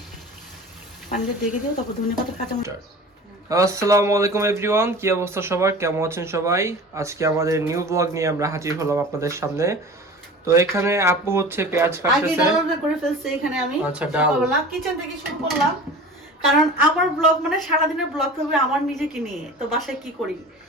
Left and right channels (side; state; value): both; normal; correlation 0.38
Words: পানিতে ডেকে দিও, তারপর ধনে পাতা কাঁচামরিচ। আসসালামু আলাইকুম এভরিওয়ান, কি অবস্থা সবার, কেমন আছেন সবাই? আজকে আমাদের নিউ ব্লগ নিয়ে আমরা হাজির হলাম আপনাদের সামনে। তো এখানে আপু হচ্ছে পেঁয়াজ আগে কাটতেছে। ডালটা করে ফেলছি এখানে আমি। আচ্ছা, ডাল। সকালবেলা কিচেন থেকে শুরু করলাম, কারণ আমার ব্লগ মানে সারাদিনের ব্লগ হবে আমার নিজেকে নিয়ে। তো বাসায় কি করি,